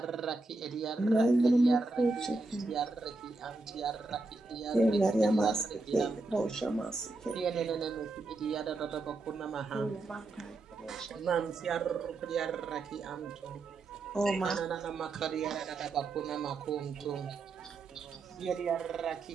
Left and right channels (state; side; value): quieter; left; 3.2 dB